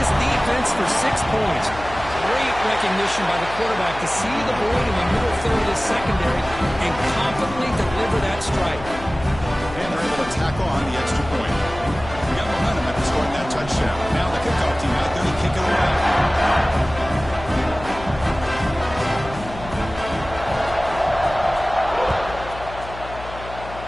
defense for 6 points. Great recognition by the quarterback to see the void in the middle third of this secondary and confidently deliver that strike. And they're able to tack on the extra point. We got momentum after scoring that touchdown. Now the kickoff team out there to kick it away.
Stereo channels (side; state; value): left; noise; hum, 13 dB below the sound